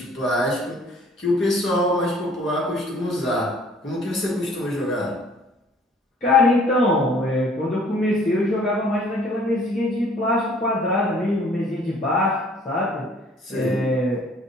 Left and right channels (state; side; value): normal; both; correlation 0.56